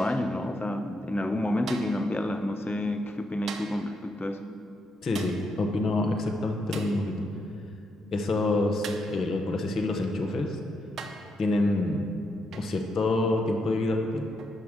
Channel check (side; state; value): both; normal; correlation 0.80